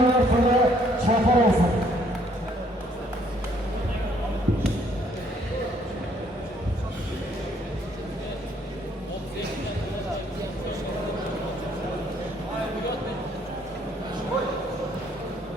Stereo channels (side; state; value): both; normal; correlation 0.65